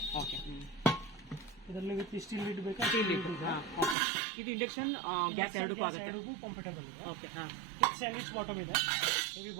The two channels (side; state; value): left; drops out; at 4.0 s